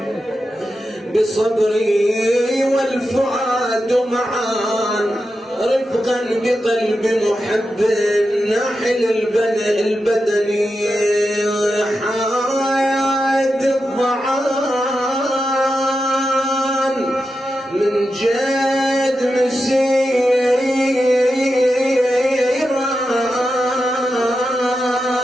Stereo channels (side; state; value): both; normal; correlation 0.89